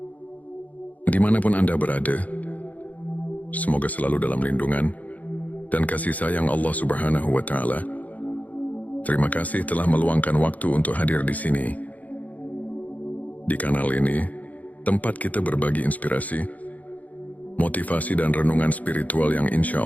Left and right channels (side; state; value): right; late; 0.075 ms